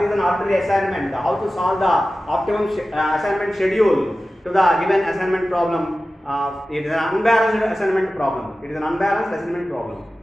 is an arbitrary assignment, how to solve the optimum assignment schedule to the given assignment problem. It is an unbalanced assignment problem. It is an unbalanced assignment problem.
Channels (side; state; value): both; normal; correlation 0.95